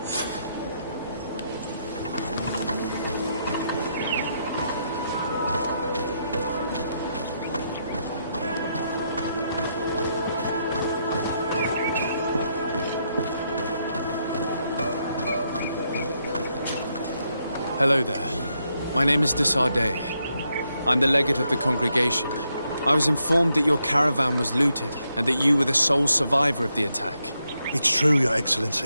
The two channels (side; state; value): both; inverted; correlation -0.79